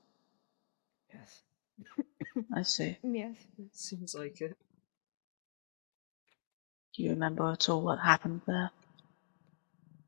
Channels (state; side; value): silent; right; digital silence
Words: Yes. I see. Yes. It seems like it. Do you remember at all what happened there?